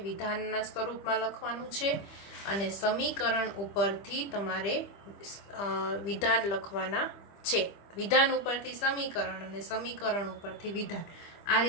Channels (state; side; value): late; right; 25 ms